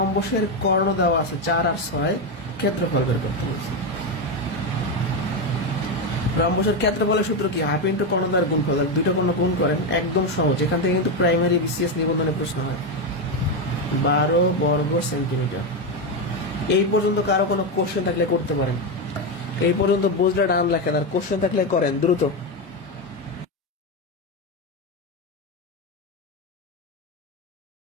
কর্ণ দেওয়া আছে 4 আর 6, ক্ষেত্রফল বের করতে বলছে। রম্বসের ক্ষেত্রফলের সূত্র কি? হাফ ইন্টু কর্ণদ্বয়ের গুণফল। দুইটা কর্ণ গুণ করেন, একদম সহজ। এখান থেকে কিন্তু প্রাইমারি বিসিএস নিবন্ধনে প্রশ্ন হয়। 12 বর্গ সেন্টিমিটার। এই পর্যন্ত কারো কোনো কোশ্চেন থাকলে করতে পারেন। এই পর্যন্ত বুঝলে ডান লেখেন, আর কোশ্চেন থাকলে করেন দ্রুত।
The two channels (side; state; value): both; normal; correlation 0.10